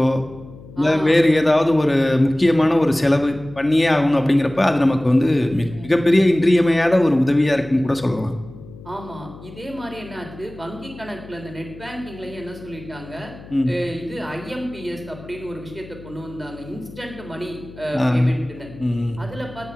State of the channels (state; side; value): noise; left; hum, 18 dB below the sound